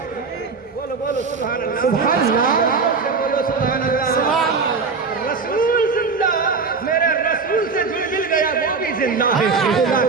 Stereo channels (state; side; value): quieter; left; 4.8 dB